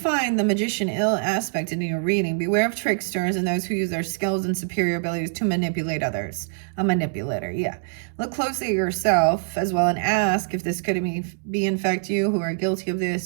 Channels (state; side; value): silent; left; digital silence